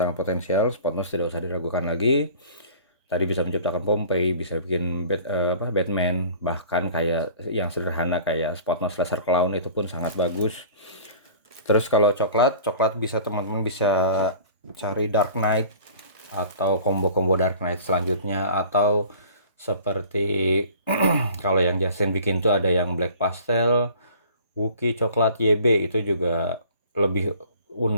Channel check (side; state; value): both; inverted; correlation -0.46